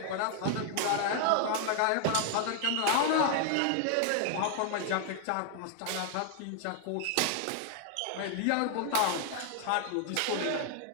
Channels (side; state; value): both; different; correlation 0.00